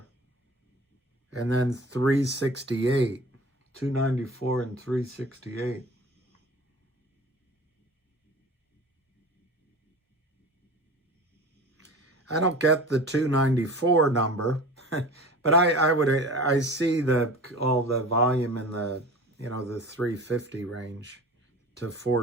and then 368. 294 and 368. I don't get the 294 number, but I see all the volume in the the 350 range to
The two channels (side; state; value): both; normal; correlation 0.38